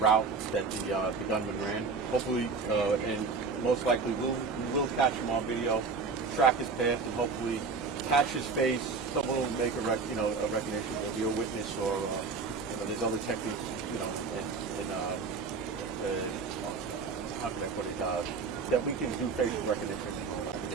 that the gunman ran. Hopefully, and most likely, we will catch him on video, track his path, and hopefully catch his face. Someone will make a recognition. There'll be a witness, or there's other techniques, how can I put it? That we can do facial recognition.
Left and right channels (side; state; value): left; quieter; 4.6 dB